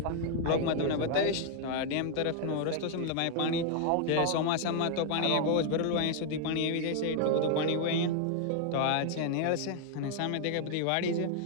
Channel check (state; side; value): different; both; correlation 0.00